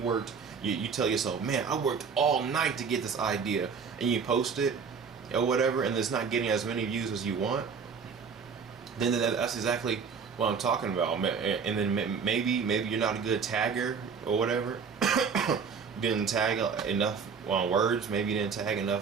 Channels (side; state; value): left; quieter; 6.0 dB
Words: tell yourself, man, I worked all night to get this idea, and you post it or whatever, and it's not getting as many views as you want, then that's exactly what I'm talking about. And then maybe you're not a good tagger or whatever. Didn't tag enough words. Maybe you didn't tag